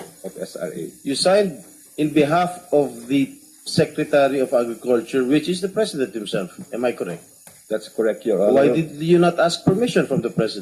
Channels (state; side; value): identical; both; correlation 1.00